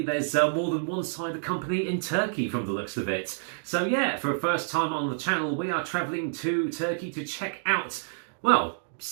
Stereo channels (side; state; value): left; silent; digital silence